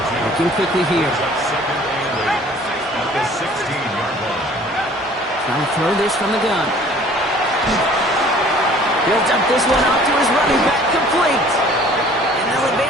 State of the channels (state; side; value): normal; both; correlation 0.52